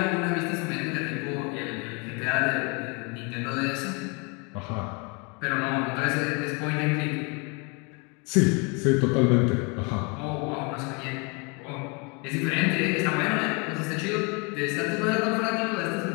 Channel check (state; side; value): quieter; right; 31.7 dB